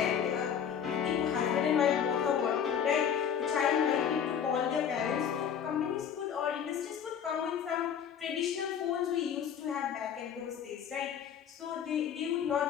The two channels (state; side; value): quieter; right; 8.2 dB